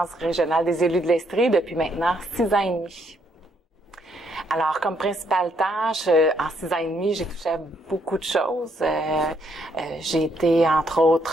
régionale des élus de l'Estrie depuis maintenant 6 ans et demi. Alors, comme principale tâche, en 6 ans et demi, j'ai touché à beaucoup de choses. J'ai été, entre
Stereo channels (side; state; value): both; normal; correlation 0.72